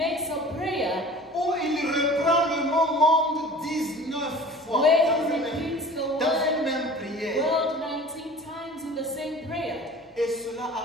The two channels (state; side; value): normal; both; correlation 0.42